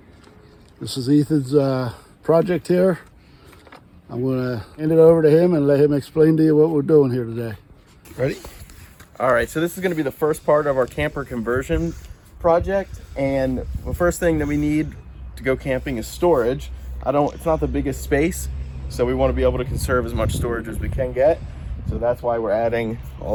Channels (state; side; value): identical; both; correlation 1.00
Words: This is Ethan's project here. I'm going to hand it over to him and let him explain to you what we're doing here today. Ready? All right, so this is going to be the first part of our camper conversion project, and the first thing that we need to go camping is storage. It's not the biggest space, so we want to be able to conserve as much storage as we can get. So that's why we're adding